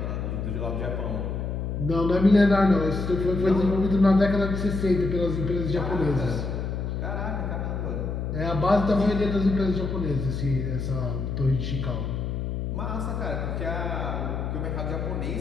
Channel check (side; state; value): left; noise; hum, 3 dB below the sound